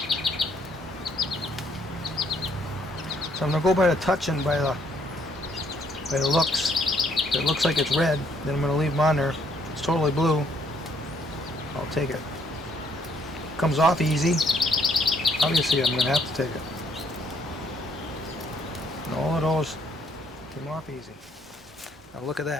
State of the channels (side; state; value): both; normal; correlation 0.68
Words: So I'm going to go by the touch and by the looks. If it looks like it's red, then I'm going to leave them on there. If it's totally blue, I'll take it. Comes off easy. Obviously I'm going to have to take it. And all of those came off easy. Now look at